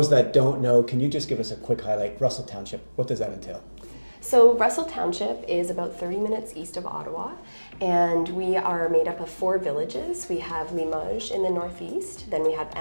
that don't know, can you just give us a quick highlight? Russell Township, what does that entail? So Russell Township is about 30 minutes east of Ottawa, and we are made up of 4 villages. We have Limoges in the northeast, then we have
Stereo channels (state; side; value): inverted; both; correlation -1.00